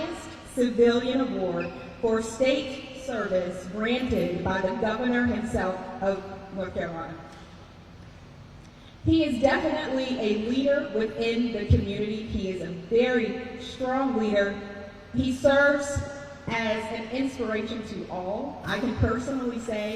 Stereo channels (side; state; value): both; identical; correlation 1.00